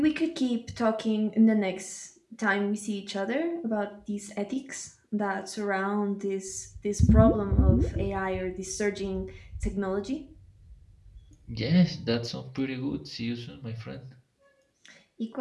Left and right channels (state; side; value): identical; both; correlation 1.00